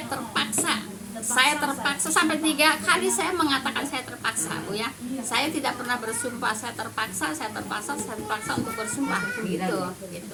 terpaksa Saya terpaksa sampai 3 kali saya mengatakan saya terpaksa, Bu ya. Saya tidak pernah bersumpah saya terpaksa untuk bersumpah gitu.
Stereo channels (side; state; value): both; identical; correlation 1.00